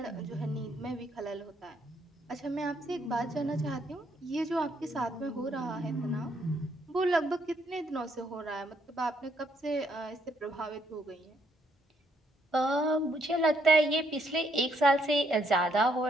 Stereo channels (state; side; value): normal; both; correlation 0.72